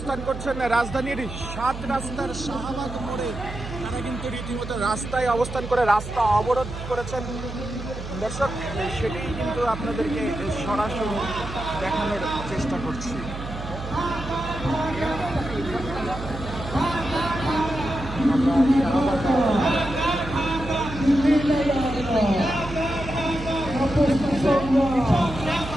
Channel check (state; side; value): noise; right; hum, 9 dB below the sound